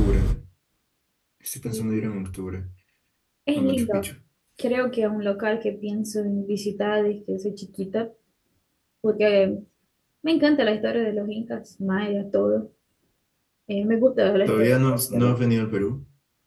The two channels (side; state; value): both; identical; correlation 1.00